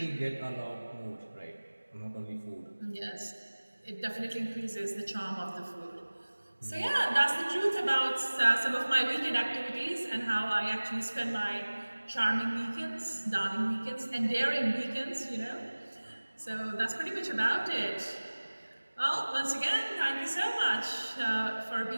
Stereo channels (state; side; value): inverted; both; correlation -1.00